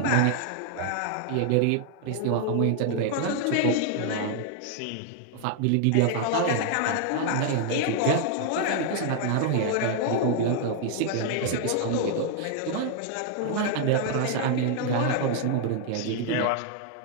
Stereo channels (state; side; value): different; both; correlation 0.00